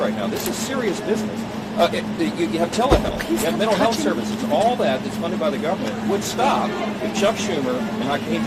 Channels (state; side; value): identical; both; correlation 1.00